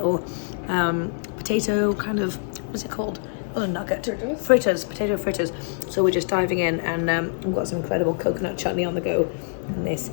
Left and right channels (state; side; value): silent; right; digital silence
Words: potato kind of, what's it called? Oh, a nugget. Fritters, potato fritters. So we're just diving in, and we've got some incredible coconut chutney on the go, and this